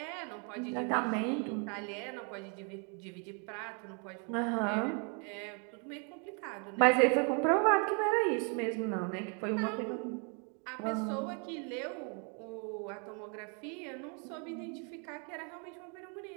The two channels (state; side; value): quieter; left; 37.7 dB